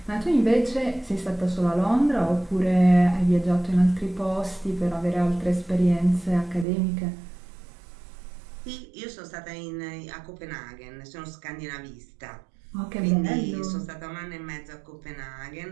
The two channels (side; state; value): left; drops out; at 6.7 s